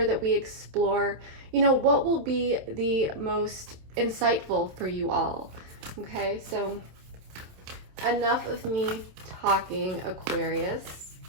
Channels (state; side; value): late; left; 27 ms